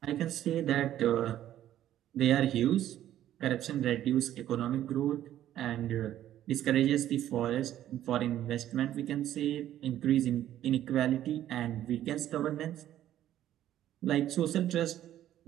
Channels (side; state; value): left; quieter; 12.2 dB